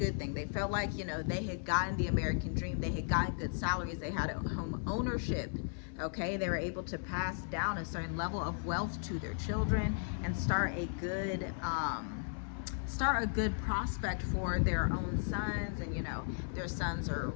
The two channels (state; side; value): silent; right; 54 dB below the other